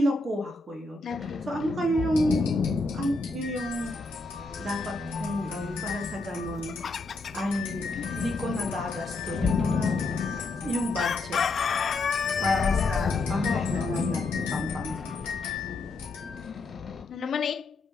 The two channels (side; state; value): right; quieter; 3.2 dB